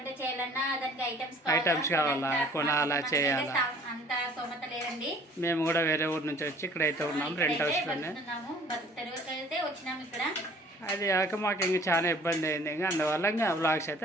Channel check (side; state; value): both; normal; correlation 0.53